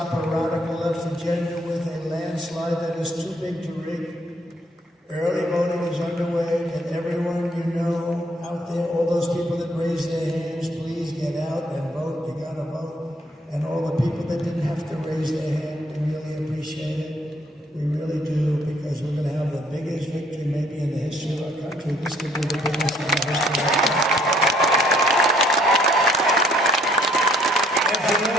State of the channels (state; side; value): normal; both; correlation 0.64